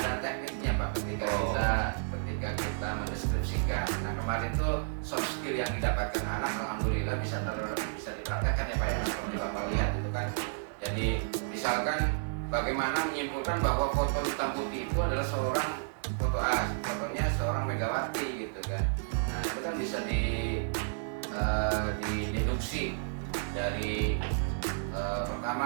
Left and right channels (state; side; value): silent; left; digital silence